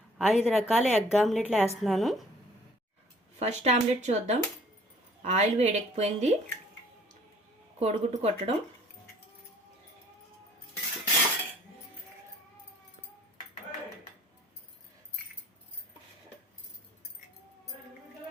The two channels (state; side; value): normal; both; correlation 0.55